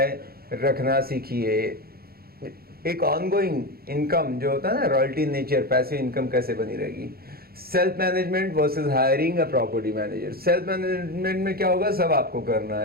रखना सीखिए। एक ऑनगोइंग इनकम जो होता है ना, रॉयल्टी नेचर, पैसिव इनकम कैसे बनी रहेगी। Self management versus hiring a property manager. Self management में क्या होगा, सब आपको करना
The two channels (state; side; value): late; left; 0.44 ms